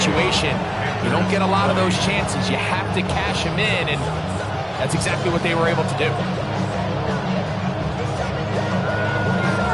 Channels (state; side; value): identical; both; correlation 1.00